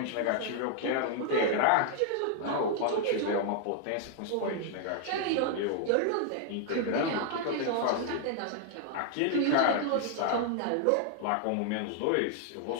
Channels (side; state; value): both; different; correlation 0.00